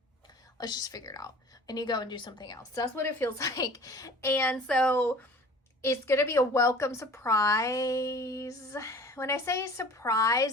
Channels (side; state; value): both; normal; correlation 0.45